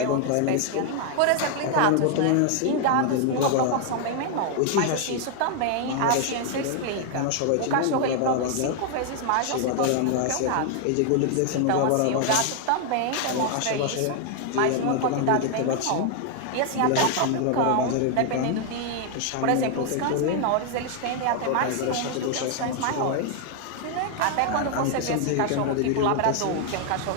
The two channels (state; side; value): different; both; correlation 0.00